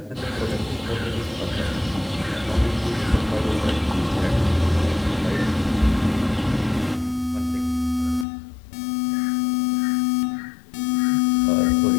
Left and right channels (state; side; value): drops out; right; at 8.2 s